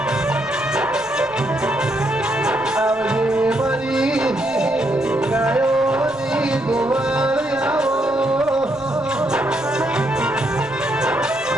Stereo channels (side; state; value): left; noise; rumble, 23 dB below the sound